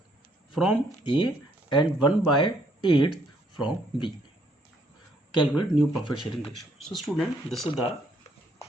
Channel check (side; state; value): both; normal; correlation 0.68